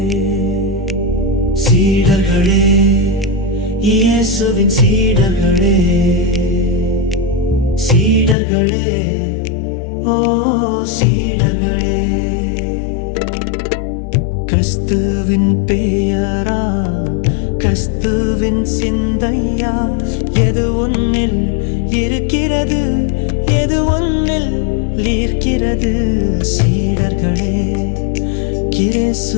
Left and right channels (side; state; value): right; drops out; at 8.3 s